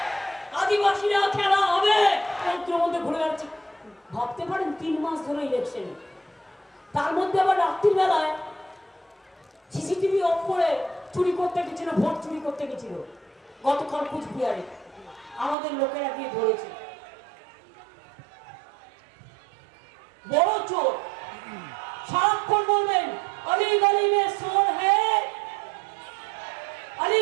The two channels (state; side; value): drops out; left; at 15.6 s